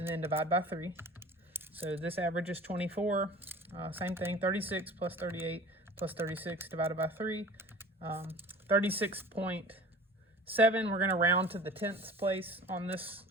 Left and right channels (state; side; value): normal; both; correlation 0.41